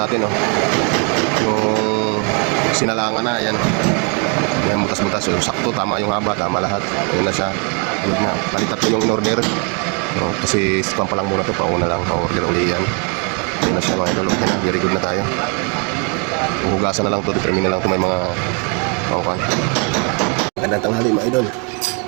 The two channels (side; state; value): left; quieter; 35.7 dB